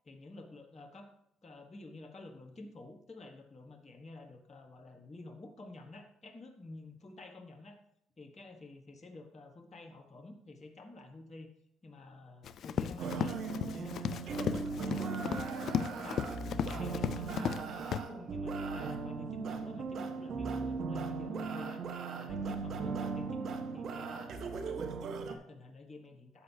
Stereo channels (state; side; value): normal; both; correlation 0.60